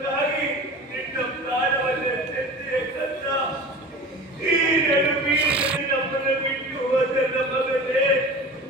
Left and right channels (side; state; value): both; normal; correlation 0.36